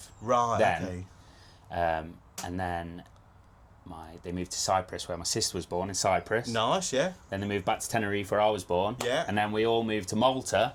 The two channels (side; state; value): both; identical; correlation 1.00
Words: Right. Then, okay. And then they moved to Cyprus, where my sister was born, in Cyprus. Nice, yeah. Then they moved back to Tenerife, where I was born. Yeah. And then we all moved to Malta.